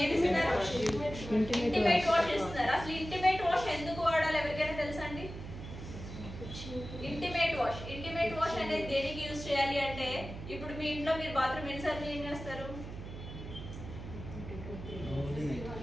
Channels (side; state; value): right; noise; hum, 10 dB below the sound